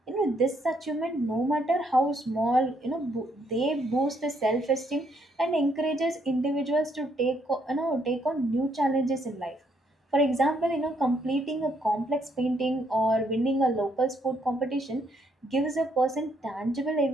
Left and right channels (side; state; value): both; normal; correlation 0.72